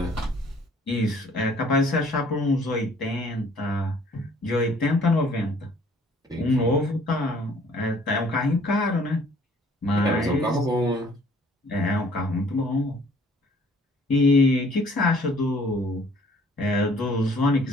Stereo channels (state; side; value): normal; both; correlation 0.57